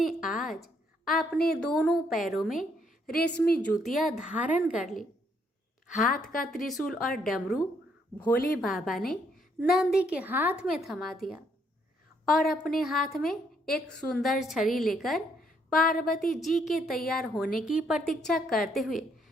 आज अपने दोनों पैरों में रेशमी जूतियां धारण कर ली। हाथ का त्रिशूल और डमरू भोले बाबा ने नंदी के हाथ में थमा दिया और अपने हाथ में एक सुंदर छड़ी लेकर पार्वती जी के तैयार होने की प्रतीक्षा करते हुए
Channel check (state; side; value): normal; both; correlation 0.71